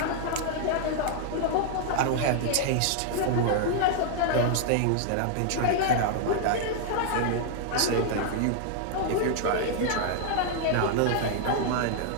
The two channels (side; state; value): both; different; correlation 0.00